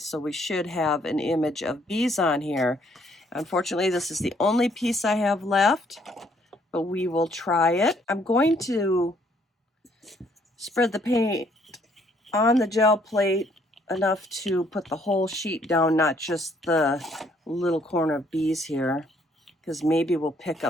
we should have an image of bees on here. Unfortunately, this is the only piece I have left, but we will try it. I'm going to spread the paint on the gel plate enough to put the whole sheet down, not just the little corner of bees here, because maybe we'll pick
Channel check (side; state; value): both; normal; correlation 0.66